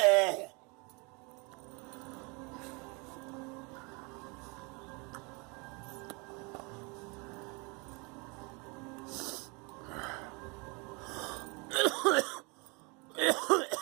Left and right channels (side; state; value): left; quieter; 30.0 dB